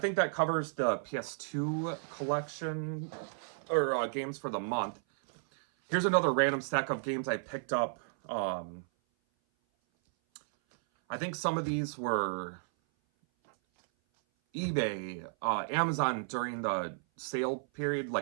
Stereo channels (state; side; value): silent; left; 56 dB below the other